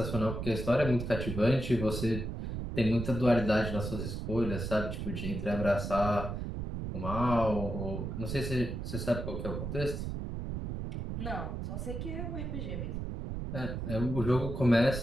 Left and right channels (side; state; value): right; noise; rumble, 4 dB below the sound